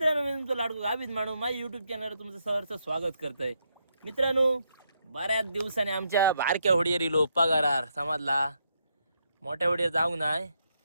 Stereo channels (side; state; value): both; inverted; correlation -0.78